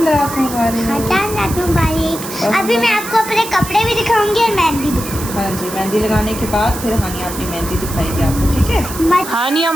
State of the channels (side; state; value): right; noise; hiss, 10 dB below the sound